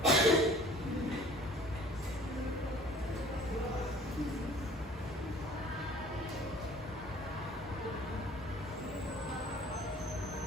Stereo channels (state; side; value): normal; both; correlation 0.50